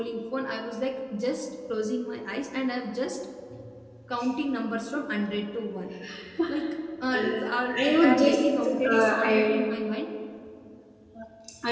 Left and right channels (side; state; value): both; identical; correlation 1.00